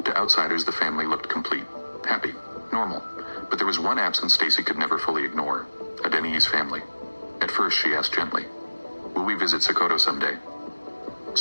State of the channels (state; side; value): inverted; both; correlation -1.00